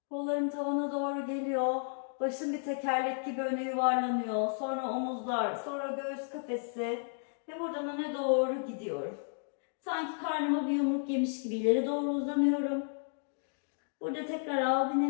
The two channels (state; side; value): silent; right; digital silence